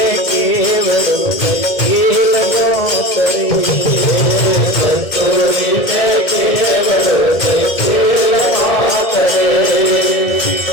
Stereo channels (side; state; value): right; late; 2.1 ms